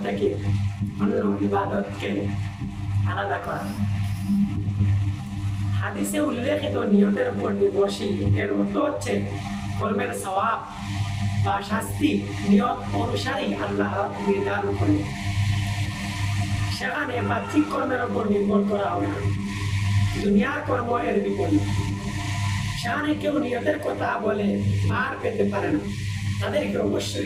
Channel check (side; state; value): both; identical; correlation 1.00